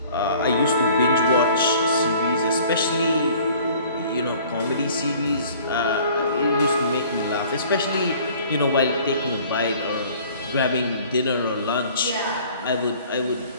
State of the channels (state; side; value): inverted; both; correlation -0.52